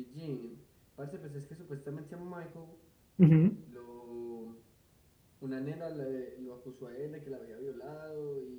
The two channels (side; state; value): both; identical; correlation 1.00